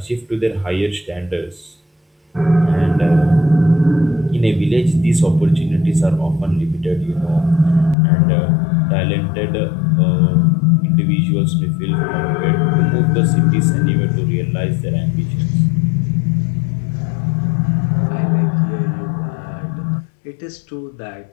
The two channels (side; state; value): right; drops out; at 8.0 s